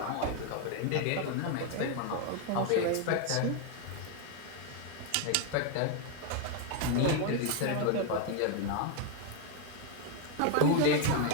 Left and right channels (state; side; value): different; both; correlation 0.01